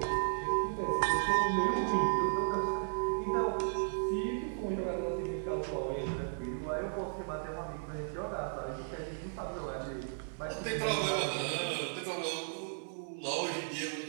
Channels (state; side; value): silent; left; 54 dB below the other